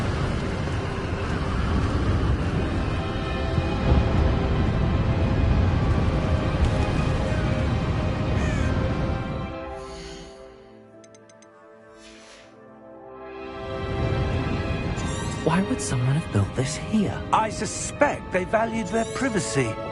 Why would someone have built this here? I suspect they valued their privacy.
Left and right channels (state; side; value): identical; both; correlation 1.00